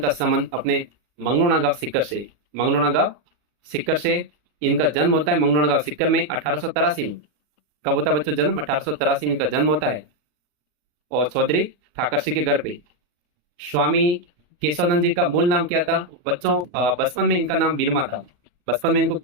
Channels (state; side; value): late; left; 40 ms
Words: का संबंध अपने मंगलोना गांव सिक्कर से, मंगलोना गांव सिक्कर से इनका जन्म होता है। मंगलोना गांव सिक्कर में 1883 में। कब होता है बच्चों जन्म? 1883 में इनका जन्म होता है, और चौधरी ठाकर सिंह के घर पे। स्वामी केशवानंद जी का मूल नाम क्या था बच्चों? बचपन में इनका नाम बिरमा था। बचपन में इनको